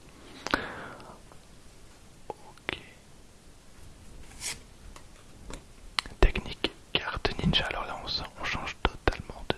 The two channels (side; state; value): both; identical; correlation 1.00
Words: Ok. Technique carte ninja. Alors là on change totalement